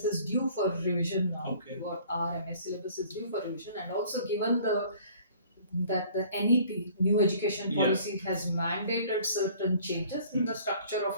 is due for revision now. Okay. What our MS syllabus is due for revision, and also given that the NEP, New Education Policy, has mandated certain changes in the structure of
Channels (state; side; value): inverted; both; correlation -0.53